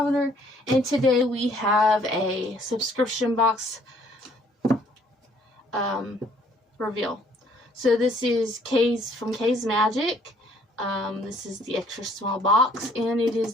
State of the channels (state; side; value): normal; both; correlation 0.61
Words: and today we have a subscription box reveal. So this is K's from K's Magic. This is the extra small box, and it is